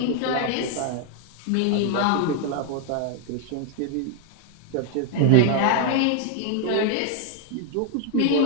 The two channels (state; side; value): different; both; correlation 0.00